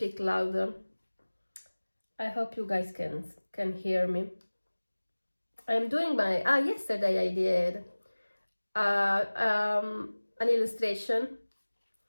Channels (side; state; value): both; inverted; correlation -1.00